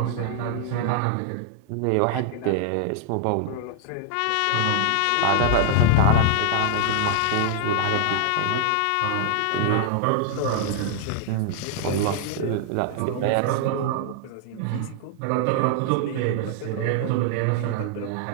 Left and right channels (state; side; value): different; both; correlation -0.01